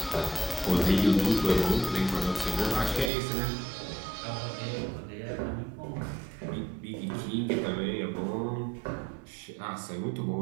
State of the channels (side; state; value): left; drops out; at 3.1 s